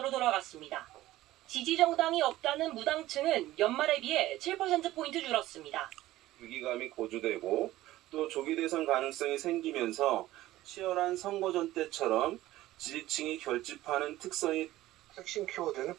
돌아갔습니다. 지지 정당이 없다는 무당층은 연말에 비해 7%포인트 줄었습니다. 위기감이 고조되고 또 조기 대선 가능성이 생기면서 치열한 선거전 때처럼 지지층이 결집하는 특성이 핵심 키워드는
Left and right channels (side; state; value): left; quieter; 15.9 dB